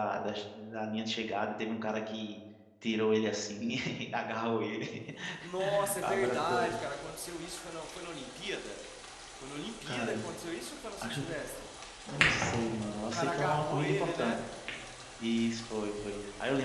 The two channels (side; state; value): both; identical; correlation 1.00